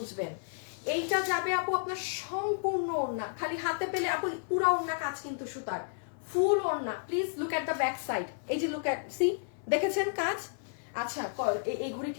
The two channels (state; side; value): silent; right; 56 dB below the other